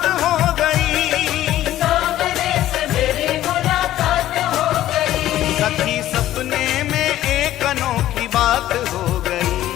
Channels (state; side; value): quieter; right; 13.6 dB